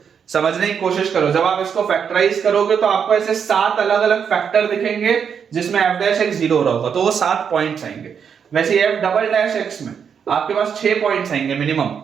समझने की कोशिश करो, जब आप इसको फैक्टराइज करोगे तो आपको ऐसे 7 अलग अलग फैक्टर दिखेंगे जिसमें एफ डैश एक्स 0 हो रहा होगा, तो वो 7 पॉइंट्स आएंगे। वैसे एफ डबल डैश एक्स में आपके पास 6 पॉइंट्स आएंगे मिनिमम,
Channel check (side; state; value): left; quieter; 7.2 dB